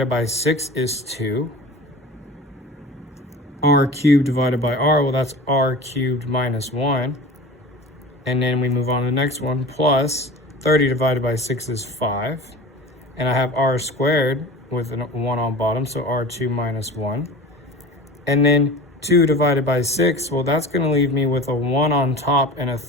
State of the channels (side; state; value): both; normal; correlation 0.35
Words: by 6 is 2. R cubed divided by R, well, that's R cubed minus 1. And then we move on to the next one, plus 30 divided by 6 is 5. And I have R squared with a 1 on bottom, so R2 minus 1. And then 2 divided by 6, well, that's going to leave me with a 1 on top and a